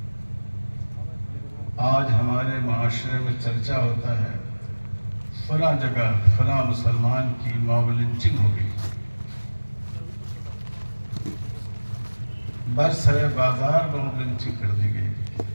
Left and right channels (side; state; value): both; inverted; correlation -1.00